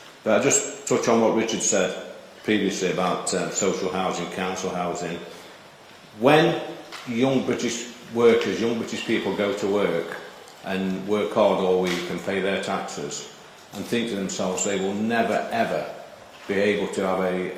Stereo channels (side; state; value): both; identical; correlation 1.00